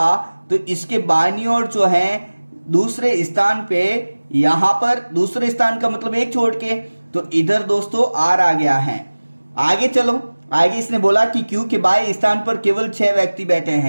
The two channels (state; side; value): inverted; both; correlation -1.00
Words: तो इसके बाईं ओर जो है दूसरे स्थान पे, यहाँ पर दूसरे स्थान का मतलब एक छोड़ के, तो इधर दोस्तों आर आ गया है। आगे चलो, आगे इसने बोला कि क्यू के बाएं स्थान पर केवल 6 व्यक्ति बैठे